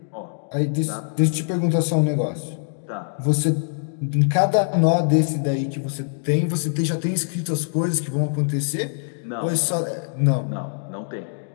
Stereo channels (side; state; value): right; silent; digital silence